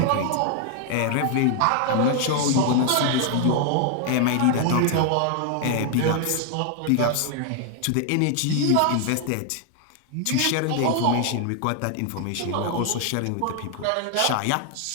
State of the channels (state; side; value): different; both; correlation 0.00